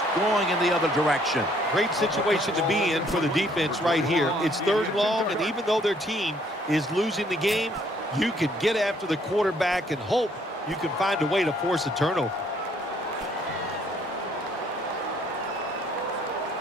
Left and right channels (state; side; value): normal; both; correlation 0.64